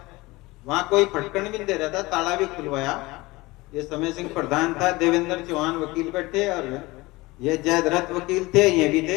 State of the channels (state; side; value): quieter; right; 21.5 dB